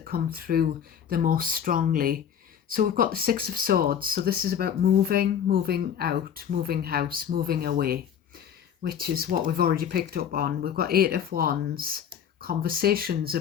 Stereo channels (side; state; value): right; quieter; 8.5 dB